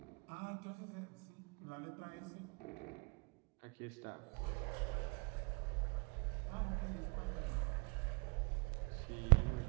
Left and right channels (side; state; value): left; quieter; 33.4 dB